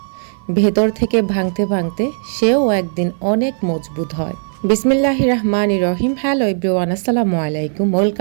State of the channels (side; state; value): left; silent; 56 dB below the other